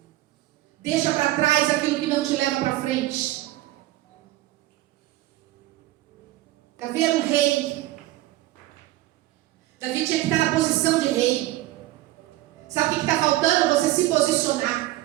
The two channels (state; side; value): quieter; left; 16.6 dB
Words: Deixa para trás aquilo que não te leva para frente. Davi era um rei. Davi tinha que estar na posição de rei. Sabe o que está faltando? Você se posicionar.